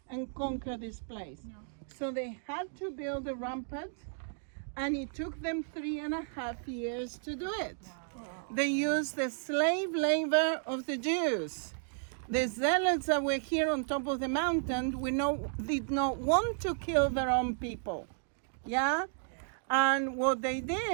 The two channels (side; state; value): left; silent; digital silence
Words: and conquer this place. So they had to build a rampart, and it took them 3.5 years to do it. they used the slave labor of the Jews. The zealots that were here on top of the mountain did not want to kill their own people. Yeah? And what they